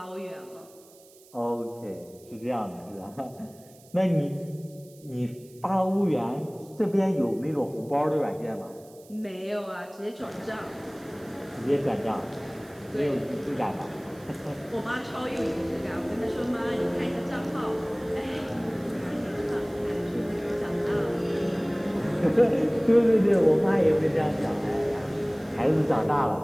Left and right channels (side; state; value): right; noise; hiss, 25 dB below the sound